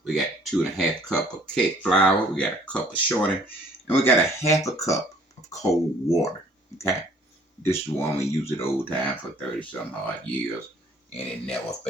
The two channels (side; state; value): both; normal; correlation 0.58